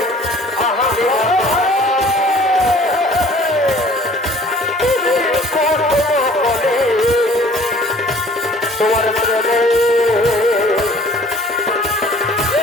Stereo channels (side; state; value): both; normal; correlation 0.52